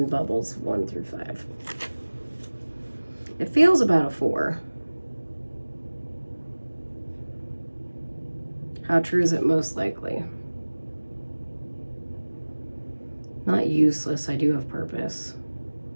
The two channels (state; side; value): inverted; both; correlation -1.00